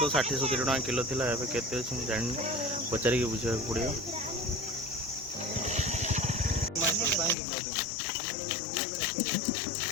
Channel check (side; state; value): right; drops out; at 7.4 s